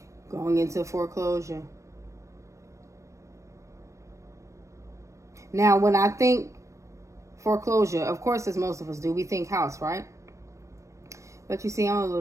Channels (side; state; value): left; late; 0.15 ms